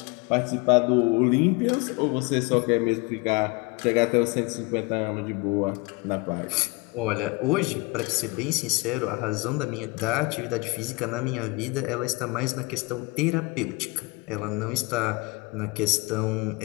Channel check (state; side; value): quieter; right; 25.5 dB